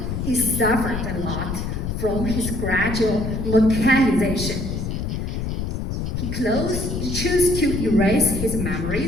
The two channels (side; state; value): left; noise; rumble, 3 dB below the sound